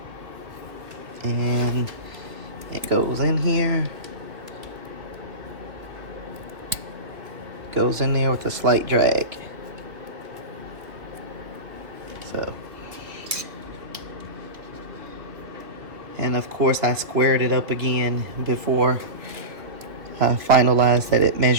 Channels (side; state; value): left; late; 2.7 ms